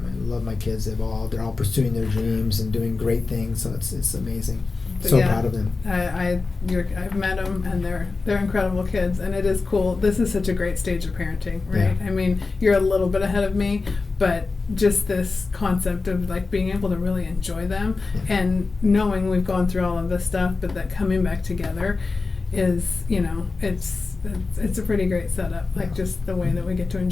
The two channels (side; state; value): right; quieter; 4.0 dB